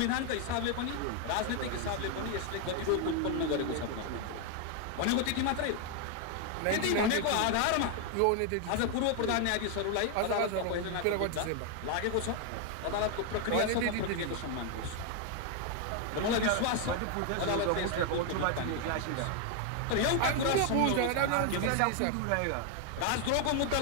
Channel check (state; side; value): different; both; correlation 0.00